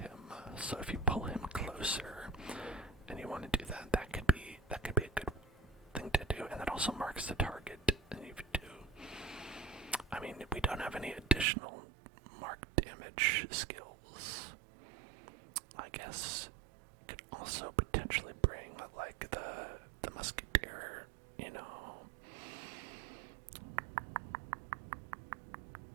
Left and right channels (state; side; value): drops out; left; at 11.5 s